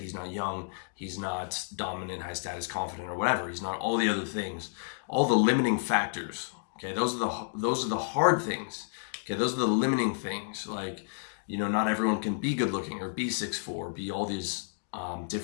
not young, he's not dominant, high status, confident, or whatever. He's not all the other things, all the limiting factors, okay? Those are the hard things, okay? Those are the limiting things, like, not everyone can be good looking or be 6'4", be all these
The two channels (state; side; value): silent; right; digital silence